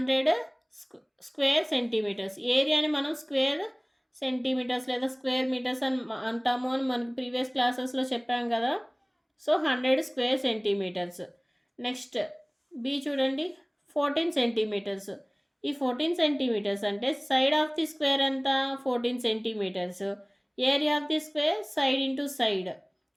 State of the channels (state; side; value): identical; both; correlation 1.00